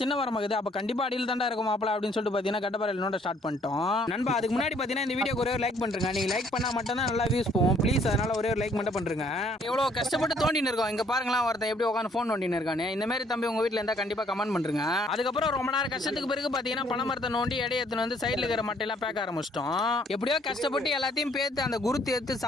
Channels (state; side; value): normal; both; correlation 0.64